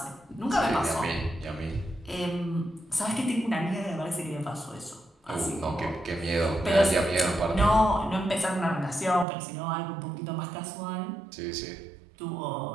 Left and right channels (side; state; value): left; drops out; at 9.2 s